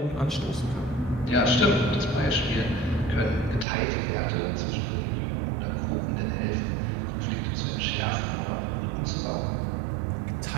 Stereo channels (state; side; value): drops out; left; at 3.7 s